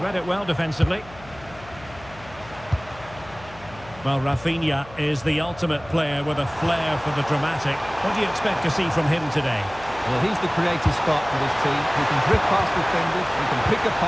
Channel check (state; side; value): noise; left; hum, 20 dB below the sound